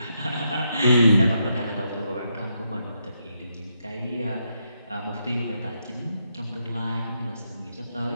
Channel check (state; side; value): inverted; both; correlation -0.81